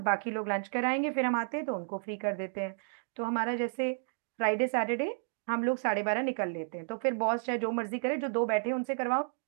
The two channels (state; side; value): silent; left; digital silence